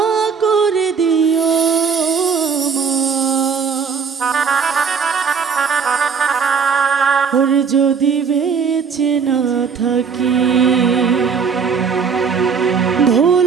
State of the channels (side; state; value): left; quieter; 6.0 dB